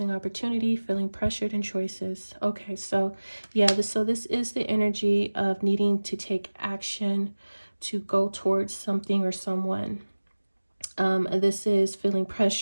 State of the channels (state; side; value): inverted; both; correlation -1.00